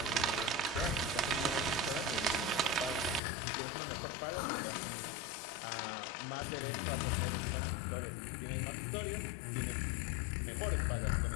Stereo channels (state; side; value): drops out; right; at 3.2 s